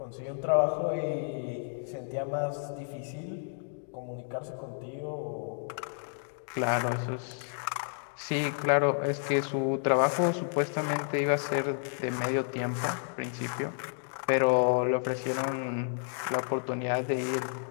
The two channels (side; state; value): right; silent; digital silence